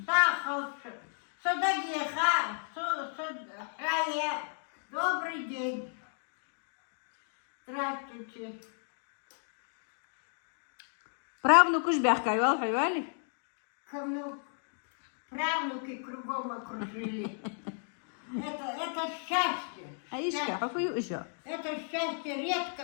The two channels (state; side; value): silent; right; 55 dB below the other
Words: sā kalču. Садагеха, хая. Добрый день. Здравствуйте. Правнуку ж бяхкайвал, хайвали? Кому правнуки кругом окружили. Это счастье. Аишка, хафую еще. Это счастье